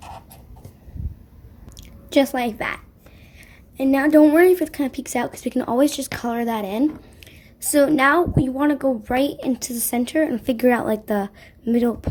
Just like that. And now don't worry if it kind of peeks out because we can always just color that in. So now we want to go right into the center and figure out like the middle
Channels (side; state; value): both; identical; correlation 1.00